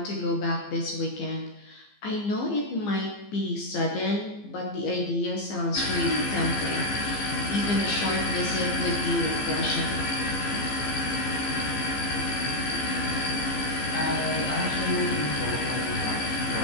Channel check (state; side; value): late; right; 15 ms